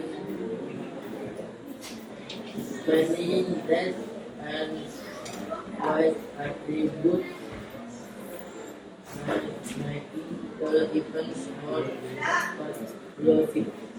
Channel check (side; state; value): both; identical; correlation 1.00